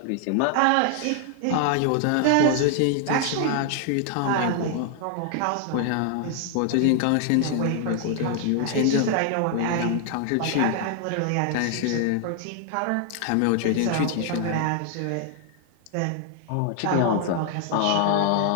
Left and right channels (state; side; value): different; both; correlation 0.00